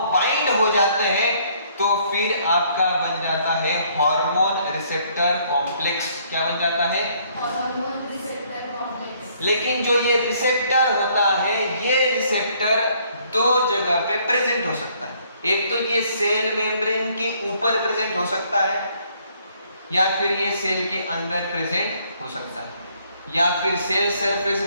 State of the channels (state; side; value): inverted; both; correlation -0.65